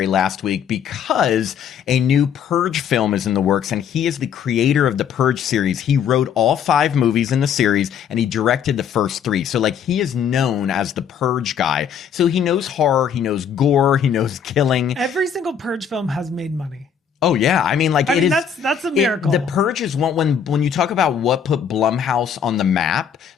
last week because a new Purge film is in the works. And he is the creator of the Purge series. He wrote all 5 movies in the series and he directed the first 3. So like he is known as the Purge guy. So he knows horror, he knows gore, he knows killing. Every single Purge film has made money. Oh yeah, I mean, like that's a miracle. The Purge is one when you talk about what put Blumhouse on the map.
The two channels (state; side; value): quieter; right; 7.8 dB